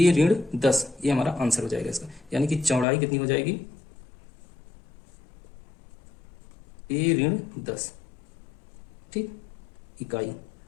ऋण 10, ये हमारा आंसर हो जाएगा इसका। यानी कि चौड़ाई कितनी हो जाएगी? ए ऋण 10 ठीक इकाई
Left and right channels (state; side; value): drops out; right; at 2.9 s